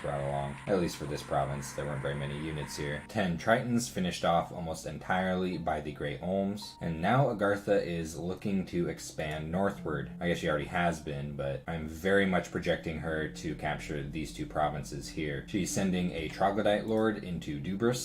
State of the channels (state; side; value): identical; both; correlation 1.00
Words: brought along. At least for this province, there weren't very many units here. 10 Tritons finished off almost entirely by the Great Olms, and now Agartha is looking to expand northward. I guess she already has been, but I'm very much projecting her to capture these 2 provinces here. She's sending a Troglodyte Lord into